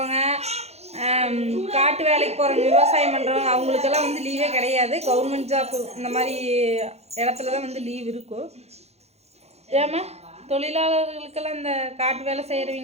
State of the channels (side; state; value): left; late; 0.31 ms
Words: காட்டு வேலைக்கு போகிறவங்க, விவசாயம் பண்ணுறவங்க அவங்களுக்கெல்லாம் வந்து லீவே கிடையாது. கவர்மெண்ட் ஜாப் இந்த மாதிரி இடத்துல தான் வந்து லீவ் இருக்கும். ஏமா தொழிலாளர்களுக்கெல்லாம் இந்த காட்டு வேலை